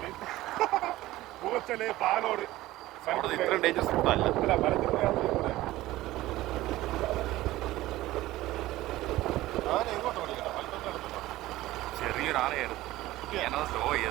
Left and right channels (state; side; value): quieter; left; 16.8 dB